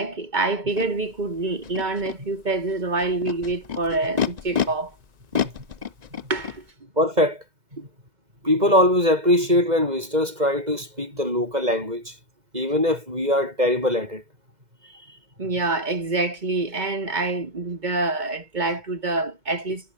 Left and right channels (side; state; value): left; late; 2.0 ms